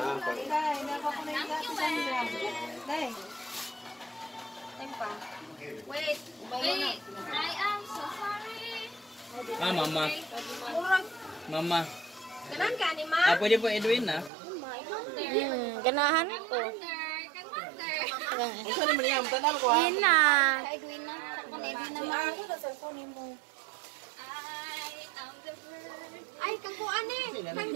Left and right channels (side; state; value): left; drops out; at 14.3 s